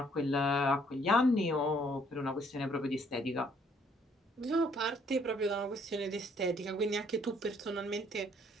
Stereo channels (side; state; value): both; normal; correlation 0.64